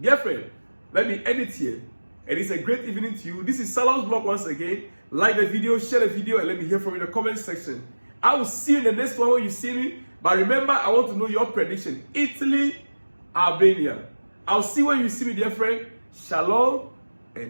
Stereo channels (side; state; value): both; inverted; correlation -1.00